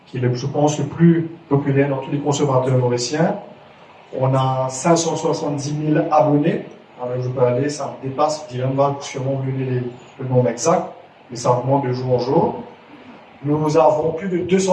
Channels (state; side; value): identical; both; correlation 1.00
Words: qui est, je pense, le plus populaire dans tous les consommateurs mauriciens. On a 570 000 abonnés. Alors je peux aller, ça me dépasse, Dylan va sûrement vous donner le nombre exact, mais ça augmente de jour en jour. Nous avons plus de